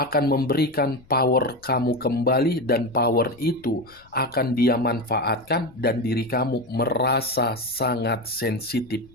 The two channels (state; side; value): noise; left; rumble, 27 dB below the sound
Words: memberikan power kamu kembali, dan power itu akan dia manfaatkan dan diri kamu merasa sangat sensitif.